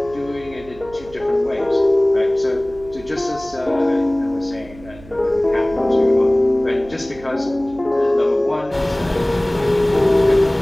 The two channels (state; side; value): noise; right; hum, 20 dB below the sound